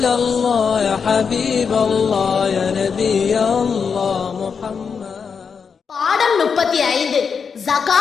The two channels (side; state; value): right; quieter; 6.1 dB